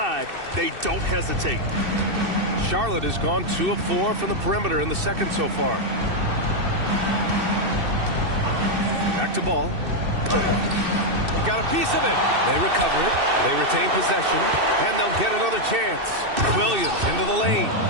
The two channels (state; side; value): late; left; 2.6 ms